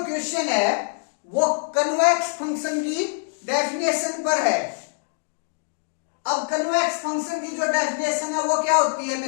question है वो कन्वेक्स फंक्शन की डेफिनेशन पर है। अब कन्वेक्स फंक्शन की जो डेफिनेशन है वो क्या होती है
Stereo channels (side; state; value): right; silent; digital silence